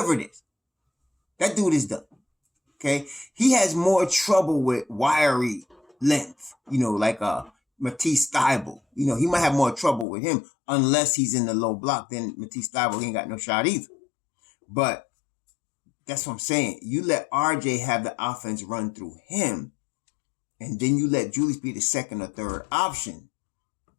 it is, that dude is done. Okay? He has more trouble with wiry length, like Matisse Thybulle. He might have more trouble with him unless he's in the low block. Then Matisse Thybulle ain't got no shot either. But that's what I'm saying. You let RJ have the offense run through him, and then you let Julius be the second or third option.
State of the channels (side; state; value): right; drops out; at 10.1 s